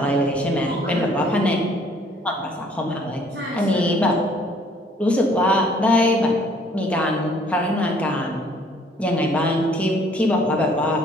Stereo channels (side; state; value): both; normal; correlation 0.60